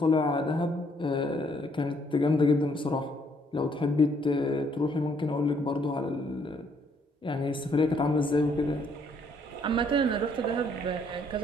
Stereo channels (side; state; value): both; normal; correlation 0.68